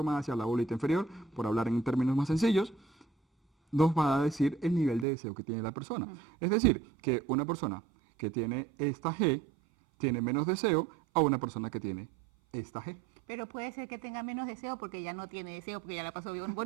sea la bolita inferior, por hablar en términos más sencillos, nos va a decir el nivel de deseo que tiene la persona. Es decir, que una persona que tiene esta G tiene menos deseo a una persona que tiene esta G. Pero puede ser que tenga menos deseo porque ya no tiene deseo, porque ya la pasó bien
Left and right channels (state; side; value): drops out; left; at 5.1 s